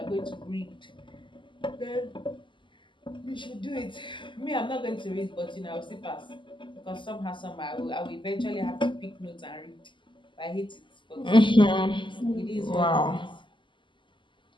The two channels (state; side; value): late; right; 0.24 ms